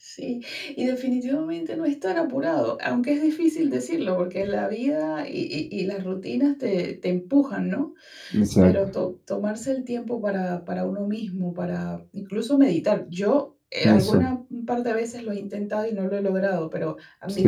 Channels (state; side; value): identical; both; correlation 1.00